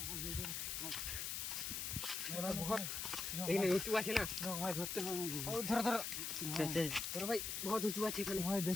এই না উঁচু আছে না ভাই ধরতে হবে নাকি? ও ধরো ধরো ধরো ভাই বহুত উঁচু আছে এখানে ভাই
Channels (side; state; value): left; noise; hiss, 3 dB below the sound